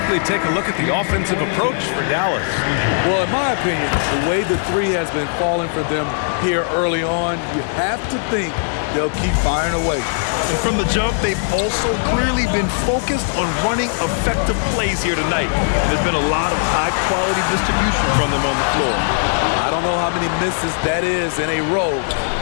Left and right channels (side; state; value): right; silent; digital silence